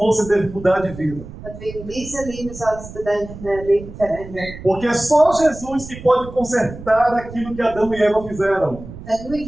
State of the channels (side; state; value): right; noise; rumble, 14 dB below the sound